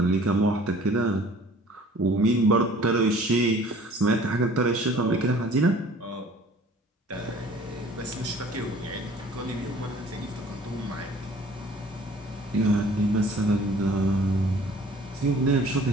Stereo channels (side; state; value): both; normal; correlation 0.51